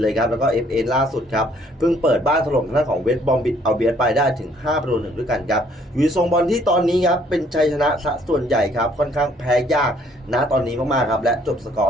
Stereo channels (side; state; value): both; normal; correlation 0.63